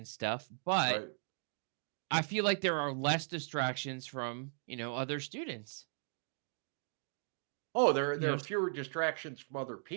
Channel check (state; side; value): silent; left; 53 dB below the other